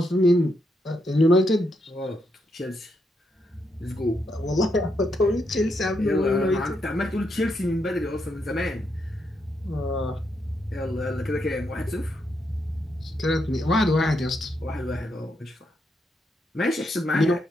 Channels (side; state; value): both; normal; correlation 0.80